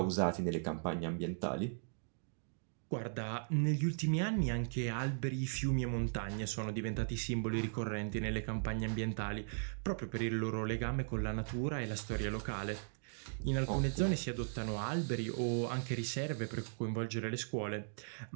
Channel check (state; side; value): silent; left; digital silence